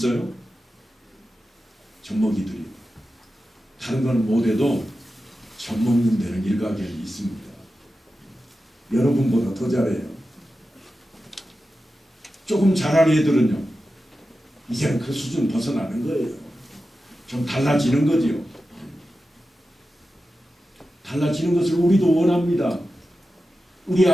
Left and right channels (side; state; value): both; normal; correlation 0.92